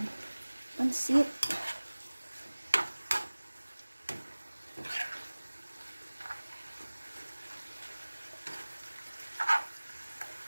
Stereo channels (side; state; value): both; inverted; correlation -1.00